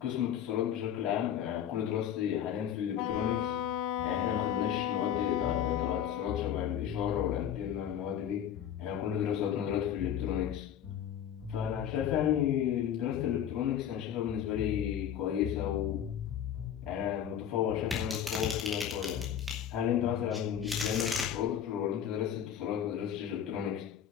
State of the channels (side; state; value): right; quieter; 9.5 dB